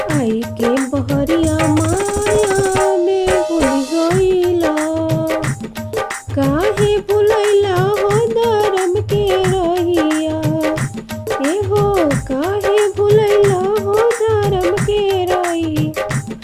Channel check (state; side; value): identical; both; correlation 1.00